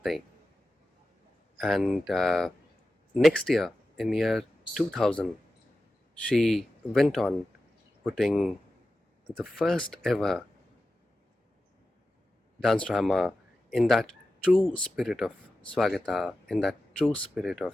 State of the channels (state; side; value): normal; both; correlation 0.93